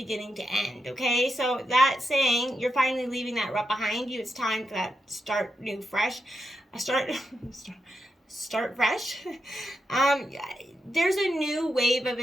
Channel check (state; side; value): normal; both; correlation 0.86